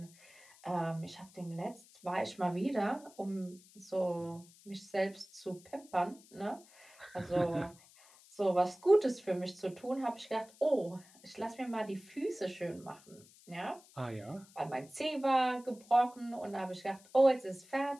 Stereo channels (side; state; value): left; noise; hiss, 24 dB below the sound